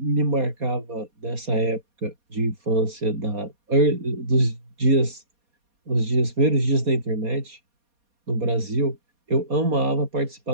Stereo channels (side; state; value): left; late; 4.2 ms